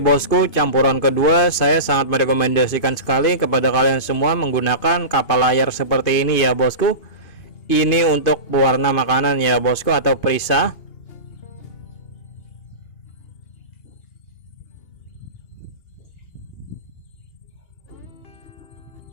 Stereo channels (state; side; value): late; right; 2.8 ms